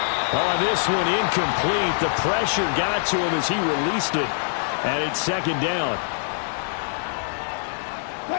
Oh, this one incomplete. The pressure got to him as he released it. And it's 2nd down.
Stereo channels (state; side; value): silent; right; digital silence